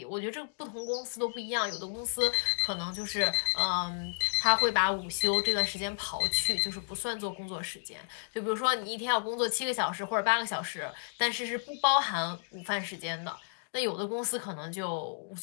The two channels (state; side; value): silent; right; digital silence